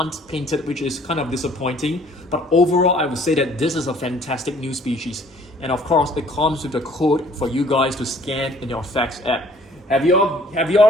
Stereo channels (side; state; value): both; normal; correlation 0.57